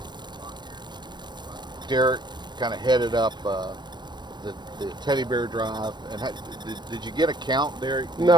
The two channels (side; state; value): left; late; 0.22 ms